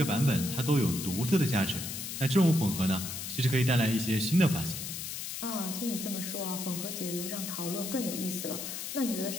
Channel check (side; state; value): left; noise; hiss, 6 dB below the sound